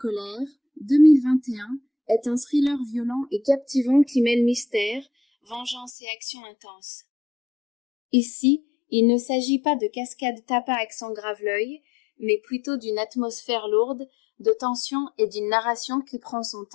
2021, est un thriller violent et captivant qui mêle mystère, vengeance et action intense. Ici, il ne s'agit pas de cascades tapas à accent grave-l'œil, mais plutôt d'une atmosphère lourde, de tension et d'une narration qui prend son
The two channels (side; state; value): right; drops out; at 5.9 s